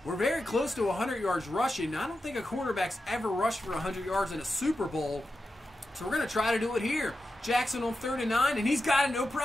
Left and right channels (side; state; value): both; normal; correlation 0.90